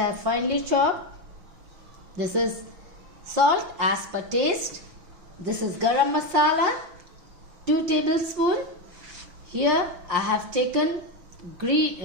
have finely chopped. This is salt as per taste. This is garam masala, 2 tablespoons. Here I have taken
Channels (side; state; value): left; late; 5.7 ms